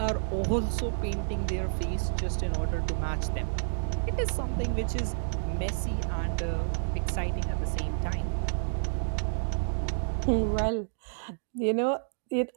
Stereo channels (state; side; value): silent; left; digital silence